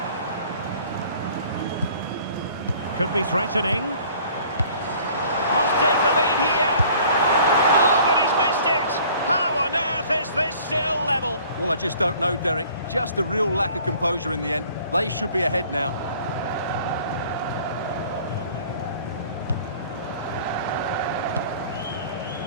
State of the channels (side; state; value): both; inverted; correlation -0.52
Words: Could be threatening. Must take the lead here. Oh, but he's missed it. How on earth is this still level? Well, I just don't know, Derek. Just a real lack of composure in the end. They should be ahead now.